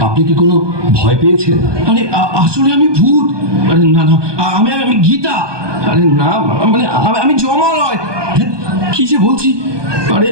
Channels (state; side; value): late; left; 1.2 ms